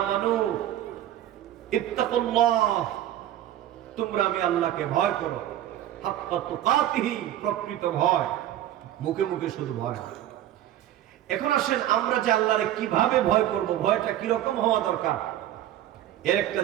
ইত্তাকুল্লাহ, তোমরা আমি আল্লাহকে ভয় করো। হাক্কা তুকাতিহি, প্রকৃত ভয়, মুখে মুখে শুধু ভয় না। এখন আসেন আমরা যে আল্লাহরে কিভাবে ভয় করব, ভয়টা কি রকম হওয়া দরকার এর একটা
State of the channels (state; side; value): quieter; left; 12.5 dB